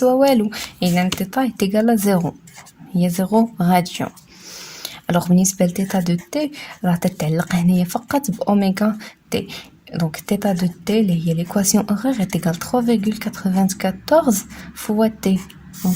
والو. اذا θ تيغال ا 0 هي 0 راديون. alors بالنسبه لثيتا دو تي راه تتعلق هنايا فقط باوميغا تي. donc θ de t اللي هي l'équation horaire est égale 3,94 fois t.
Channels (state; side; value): identical; both; correlation 1.00